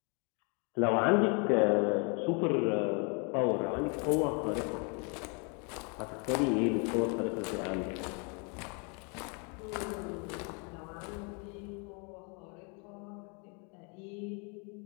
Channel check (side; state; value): right; quieter; 35.1 dB